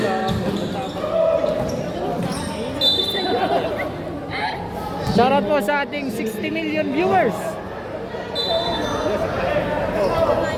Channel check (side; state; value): both; identical; correlation 1.00